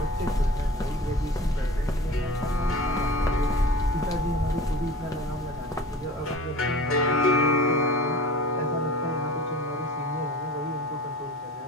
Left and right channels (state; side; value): normal; both; correlation 0.39